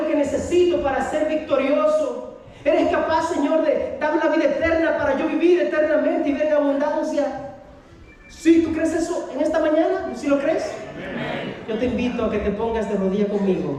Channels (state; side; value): identical; both; correlation 1.00